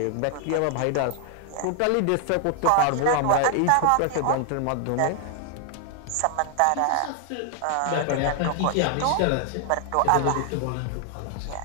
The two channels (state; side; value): different; both; correlation 0.00